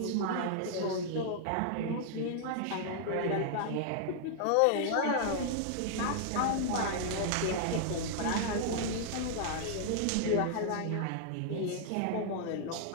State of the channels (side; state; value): both; different; correlation -0.01